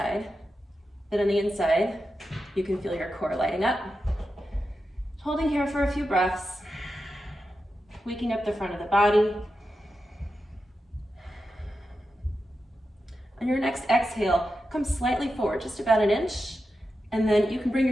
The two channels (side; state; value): both; normal; correlation 0.90